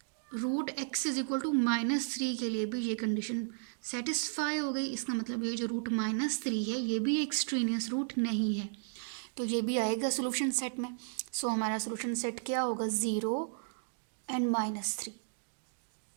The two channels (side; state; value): left; silent; digital silence